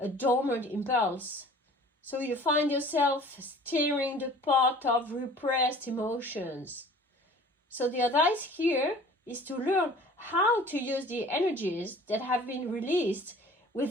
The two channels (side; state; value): both; normal; correlation 0.47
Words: dormant impulse. So you find yourself stirring the pot of repressed emotions. So the advice here is to learn how to use the energies that have been released